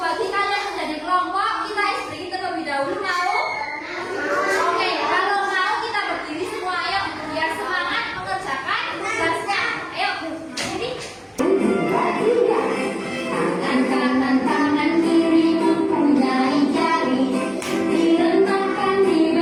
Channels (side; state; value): both; identical; correlation 1.00